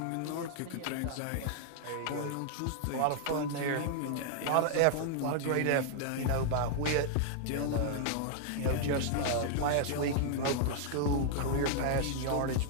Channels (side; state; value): both; different; correlation 0.00